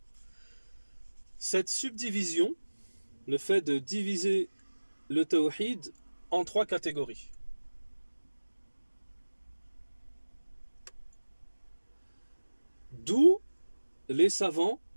cette subdivision le fait de diviser le tawhid en 3 catégories. D'où les savants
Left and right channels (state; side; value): inverted; both; correlation -1.00